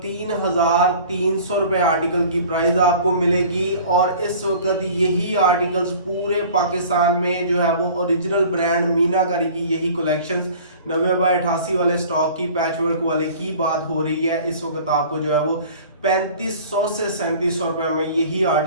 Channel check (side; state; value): both; inverted; correlation -0.46